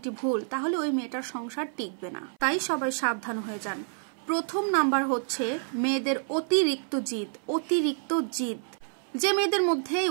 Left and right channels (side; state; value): left; silent; 59 dB below the other